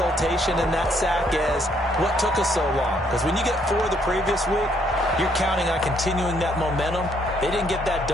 in that sack as what took us so long. Because when you get 4 the previous week, you're counting on continuing that momentum. They didn't get that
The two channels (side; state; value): both; normal; correlation 0.69